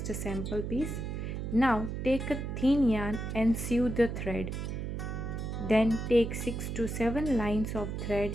a sample piece. Now take a thin yarn and sew the thread. Then take 6 to 7 lines of thread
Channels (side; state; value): right; noise; hum, 4 dB below the sound